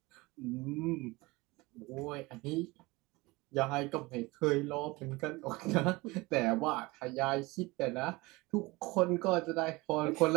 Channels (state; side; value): quieter; left; 22.7 dB